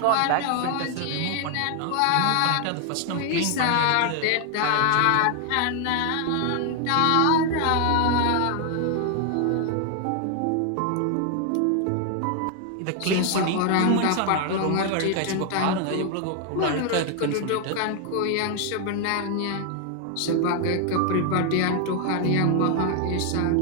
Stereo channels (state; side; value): different; both; correlation 0.00